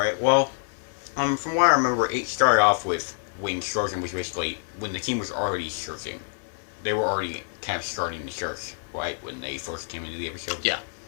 well, from what I remember, it started off with when searching was basically, when the team was already searching. They were already kind of starting the search, right? When they first came into the episode? Yeah.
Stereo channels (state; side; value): silent; right; 58 dB below the other